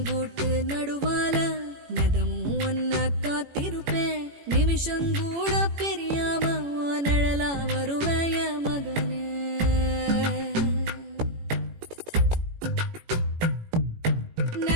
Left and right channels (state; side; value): late; left; 18 ms